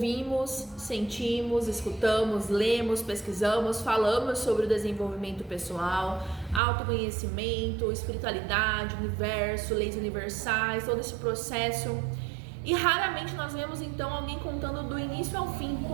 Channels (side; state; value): left; drops out; at 6.6 s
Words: sentimos, escutamos, lemos, pesquisamos, falamos sobre o desenvolvimento pessoal, autoconhecimento, espiritualidade, universo, leis universais, todo esse processo. E raramente nós vemos então alguém contando do início ao fim